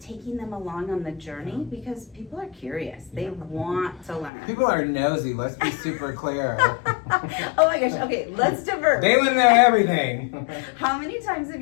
them along on the journey, because people are curious. They want to learn. People are nosy, let's be super clear. Oh my gosh, okay, let's divert. They want to know everything. How many times have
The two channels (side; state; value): right; drops out; at 4.3 s